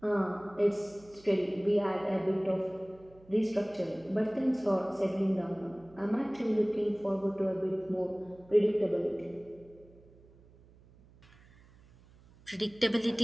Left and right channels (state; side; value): noise; right; hum, 26 dB below the sound